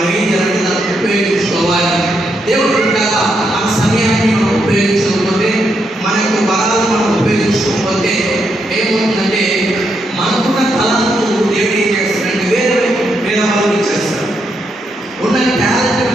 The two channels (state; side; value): normal; both; correlation 0.80